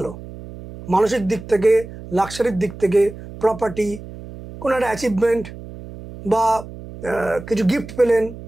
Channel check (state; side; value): noise; right; hum, 14 dB below the sound